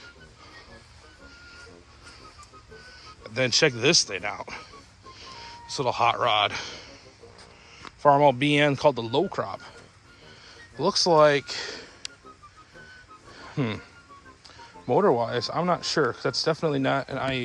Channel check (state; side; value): identical; both; correlation 1.00